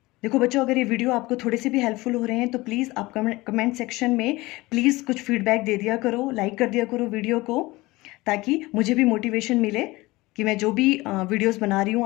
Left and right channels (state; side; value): quieter; right; 20.8 dB